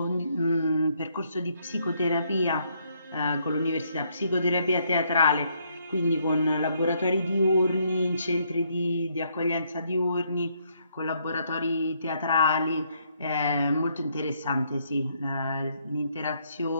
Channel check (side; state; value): both; inverted; correlation -0.71